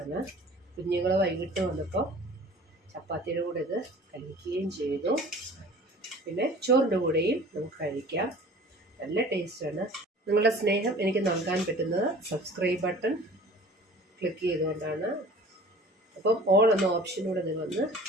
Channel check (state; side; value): normal; both; correlation 0.45